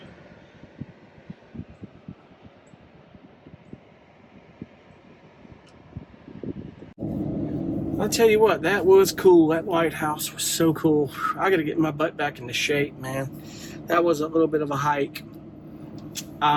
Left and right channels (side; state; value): both; identical; correlation 1.00